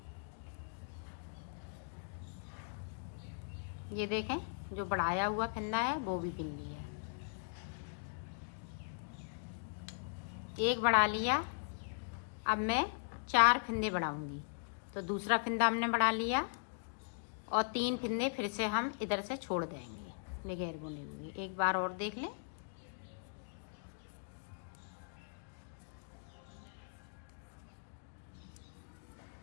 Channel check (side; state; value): right; silent; digital silence